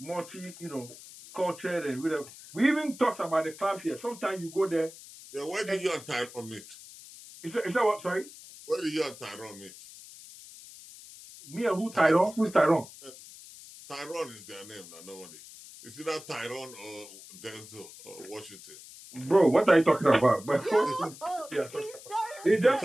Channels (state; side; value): noise; left; hiss, 17 dB below the sound